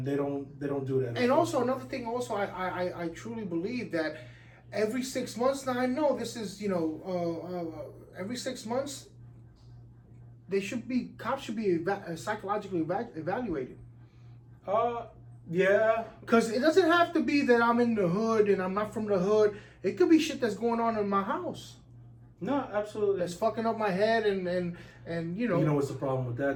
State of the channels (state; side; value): identical; both; correlation 1.00